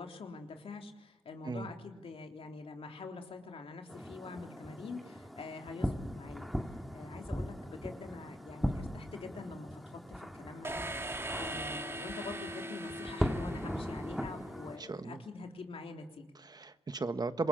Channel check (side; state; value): both; normal; correlation 0.79